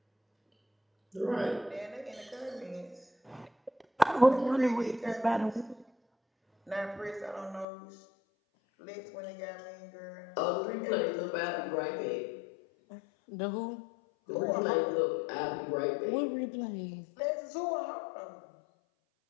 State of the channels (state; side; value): drops out; right; at 7.7 s